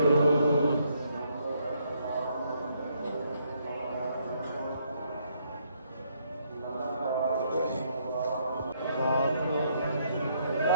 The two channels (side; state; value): both; inverted; correlation -0.72